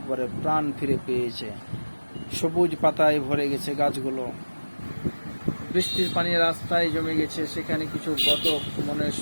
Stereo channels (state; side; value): inverted; both; correlation -1.00